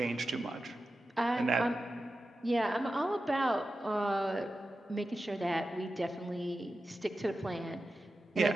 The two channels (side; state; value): both; normal; correlation 0.92